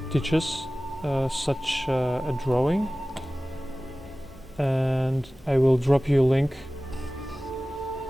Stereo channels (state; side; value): normal; both; correlation 0.97